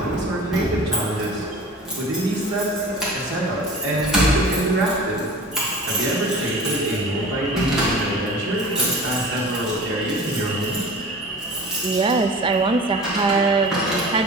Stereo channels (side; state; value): both; normal; correlation 0.39